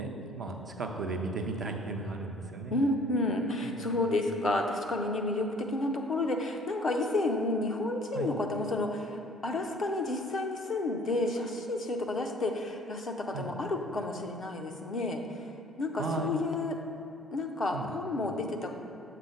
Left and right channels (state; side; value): normal; both; correlation 0.53